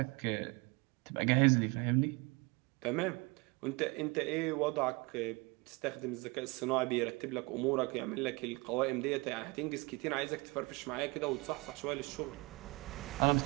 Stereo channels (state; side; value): quieter; left; 26.4 dB